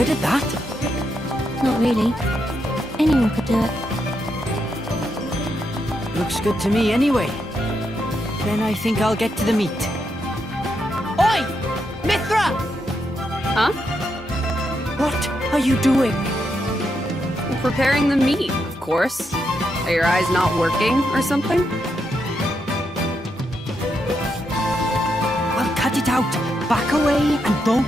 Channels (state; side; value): normal; both; correlation 0.82